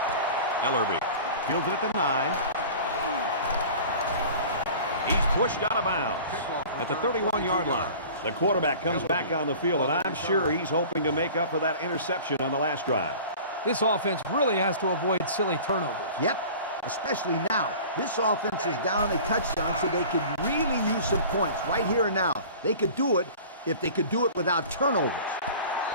Ellerby fields it at the 9. He's pushed out of bounds at the 31-yard line. The quarterback comes back on the field, and I'm sure he's hoping to make up for that interception on the last drive. This offense really has to avoid silly turnovers. Yep, especially now. This offense is down a touchdown, so they could really use some points right here and now. They could do it if they could do it without turnovers.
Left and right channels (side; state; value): both; inverted; correlation -0.42